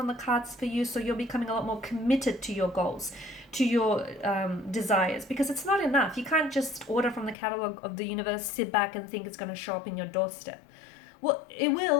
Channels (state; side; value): drops out; right; at 7.4 s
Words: the cards for you, so you're becoming a lot more committed to your goals, to your desires, because it's not enough. You can't just order from the catalog of the universe, sit back and think it's going to show up in your doorstep. Well, it